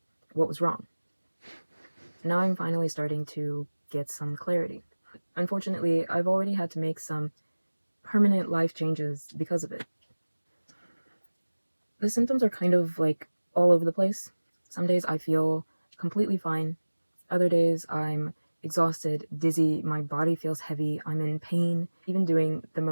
what was wrong. Now I'm finally starting to get some clarity. Unfortunately, I've already had to make some permanent life changes because of it. The symptoms are kind of like all over the place. Some days I feel completely fine. Other days I'm exhausted, dizzy, my body feels heavy, I'm in pain. Even doing the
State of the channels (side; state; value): both; inverted; correlation -1.00